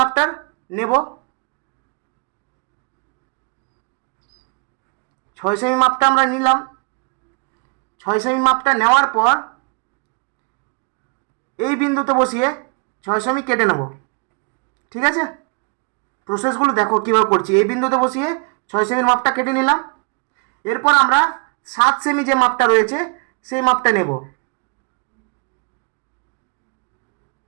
নেব। 6 সেমি মাপটা আমরা নিলাম। 6 সেমি মাপটা নেওয়ার পর এই বিন্দুতে বসিয়ে 6 সেমি কেটে নেব। ঠিক আছে, প্রসেসগুলো দেখো কীভাবে করছি। এই বিন্দুতে বসিয়ে 6 সেমির মাপটা কেটে নিলাম। এরপর আমরা 7 সেমি যে মাপটা রয়েছে সেই মাপটা নেব।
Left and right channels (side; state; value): left; quieter; 35.4 dB